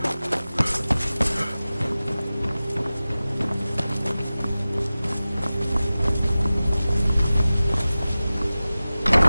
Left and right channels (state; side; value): inverted; both; correlation -0.96